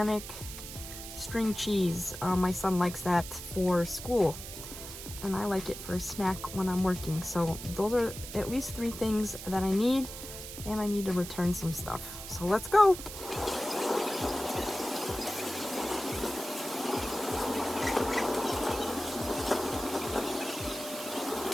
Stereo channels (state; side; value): noise; right; hiss, 10 dB below the sound